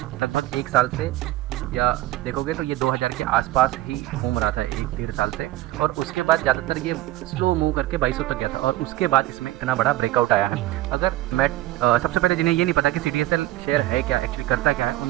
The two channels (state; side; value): quieter; left; 16.2 dB